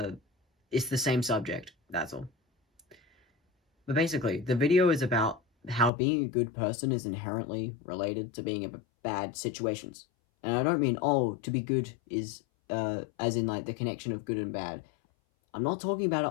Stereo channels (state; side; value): drops out; right; at 5.9 s